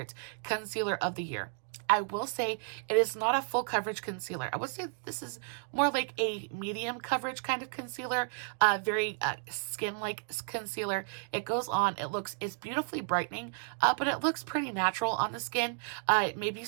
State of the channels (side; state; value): left; silent; 56 dB below the other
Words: concealer of the year. I will say it is not a full coverage concealer. I would say this is more like a medium coverage kind of concealer, very skin-like concealer. It goes on, it's beautifully brightening, but it looks pretty natural on the skin. Maybe